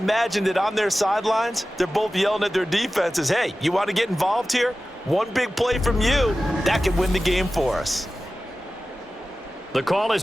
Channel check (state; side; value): normal; both; correlation 0.95